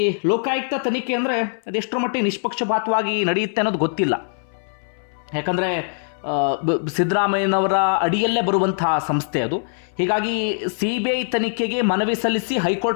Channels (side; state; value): right; silent; 60 dB below the other